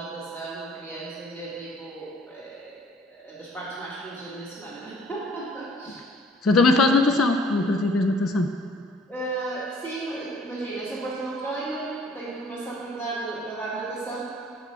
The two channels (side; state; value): both; normal; correlation 0.56